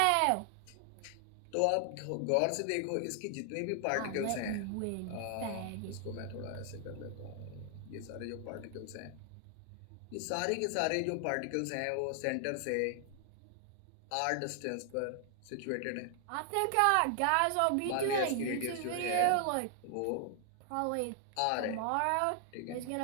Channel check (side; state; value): both; different; correlation 0.00